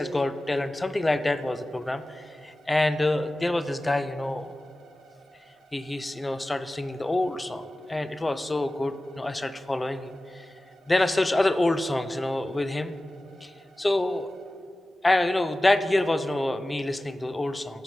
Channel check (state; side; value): normal; both; correlation 0.96